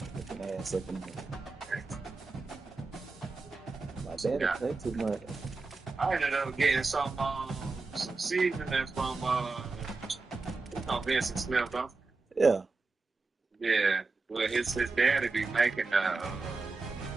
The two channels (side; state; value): left; quieter; 3.8 dB